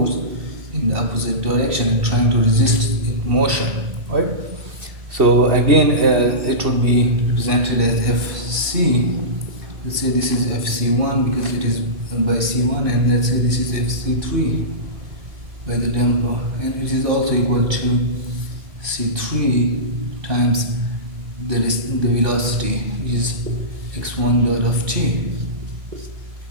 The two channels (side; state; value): left; late; 2.4 ms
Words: in the opposite direction and trying to resist its motion, right? So again, it would be represented as Fc. Let's say this is Fc1 because it is by c1, and let's say this is Fc3 by the damper, and it is also equal to c3 times the velocity, which is x1 dot of t.